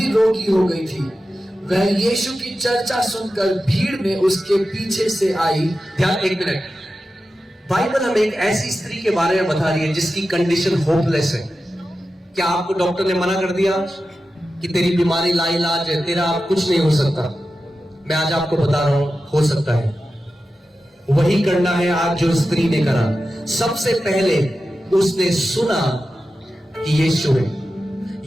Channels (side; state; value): both; normal; correlation 0.92